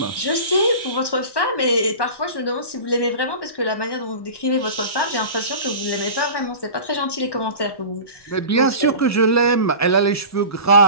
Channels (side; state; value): right; late; 1.1 ms